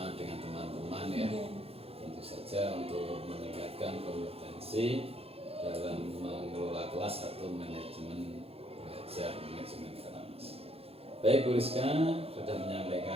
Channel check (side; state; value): left; late; 0.28 ms